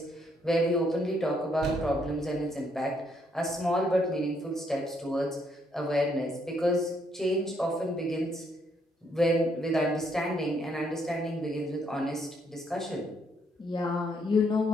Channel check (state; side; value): normal; both; correlation 0.72